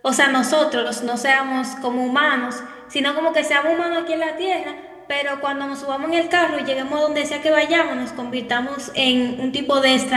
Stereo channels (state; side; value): identical; both; correlation 1.00